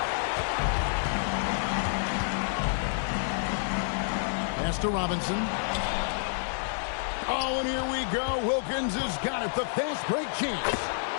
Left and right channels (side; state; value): right; silent; digital silence